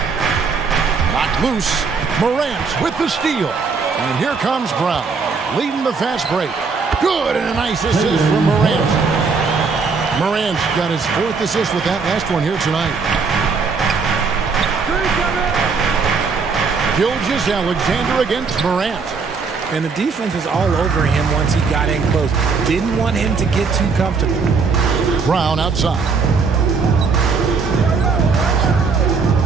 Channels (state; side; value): quieter; left; 5.0 dB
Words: Knocked loose. Morant with the steal. And here comes Brown, leading the fast break. Good, and a nice assist from Morant. Morant's got his 4th assist with that last one here tonight. Gilgeous-Alexander against Morant. And the defense was all over him once he got in close. Didn't want him to get too comfortable. Brown outside.